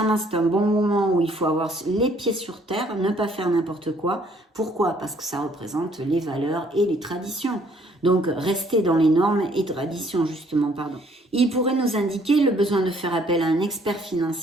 c'est un bon moment où il faut avoir les pieds sur terre, ne pas faire n'importe quoi. Pourquoi? Parce que ça représente les valeurs et les traditions. Donc, rester dans les normes et traditions, justement, pardon. Il pourrait nous indiquer le besoin de faire appel à un expert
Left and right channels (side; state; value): both; normal; correlation 0.63